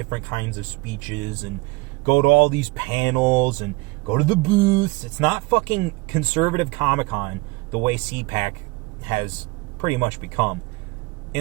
kinds of speeches and go to all these panels and go to the booths. It's not fucking conservative Comic-Con the way CPAC has pretty much become.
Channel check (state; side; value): quieter; left; 23.7 dB